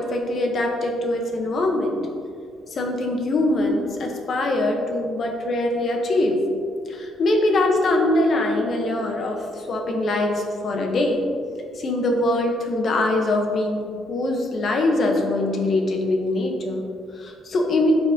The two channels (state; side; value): normal; both; correlation 0.72